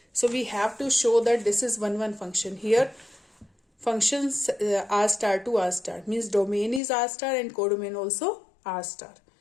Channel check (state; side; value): drops out; right; at 6.8 s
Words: So we have to show that this is 1 1 function. Here functions r star to r star means domain is r star and codomain also r star.